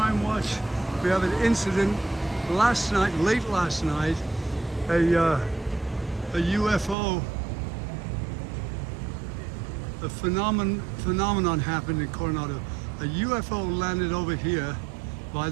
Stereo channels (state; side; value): drops out; left; at 7.0 s